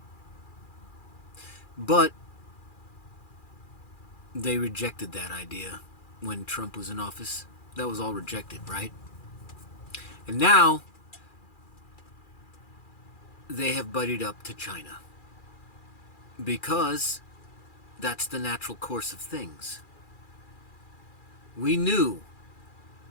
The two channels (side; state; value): right; late; 2.4 ms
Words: But they rejected that idea when Trump was in office. That was all rejected, right? And now they have buddied up to China because that's the natural course of things. We knew